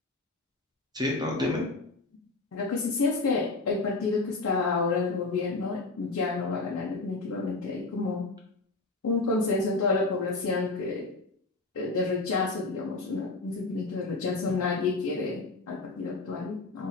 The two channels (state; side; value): quieter; right; 3.4 dB